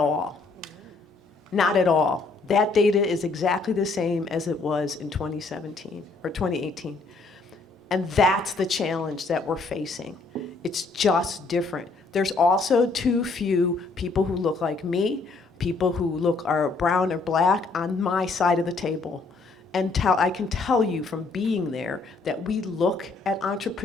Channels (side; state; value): right; quieter; 3.9 dB